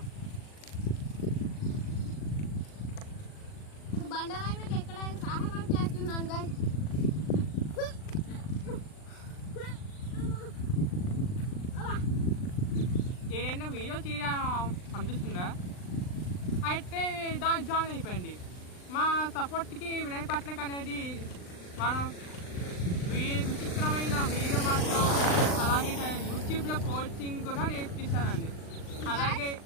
ఇప్పుడు బండరాయి మీద ఎక్కడానికి సహాయం చేస్తున్నాను గాయస్. ఏదైనా వీడియో చేయడం అనిపిస్తుందా అయితే దాని జాయిన్ అయిపోయింది. మా సపోర్ట్కి వినయ్ పట్నక్ అనేది మనం విచిత్రమైన వీడియో మాత్రం, అలాగే యూట్యూబ్లో కోచింగ్ కూడా నేర్పిస్తానండి. అలాగే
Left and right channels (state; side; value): late; right; 39 ms